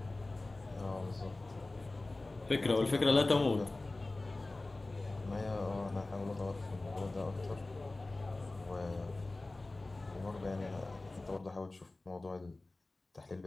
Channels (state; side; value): quieter; right; 3.0 dB